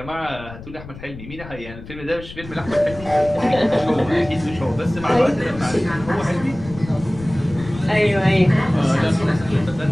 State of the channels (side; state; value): left; noise; rumble, 15 dB below the sound